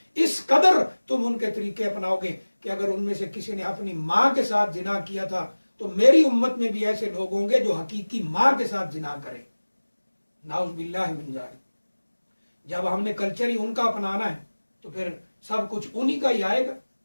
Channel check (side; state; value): both; inverted; correlation -1.00